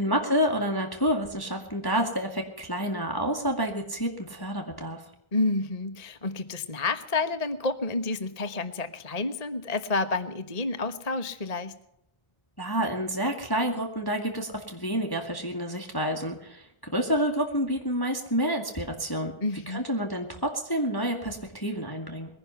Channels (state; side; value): late; right; 1.1 ms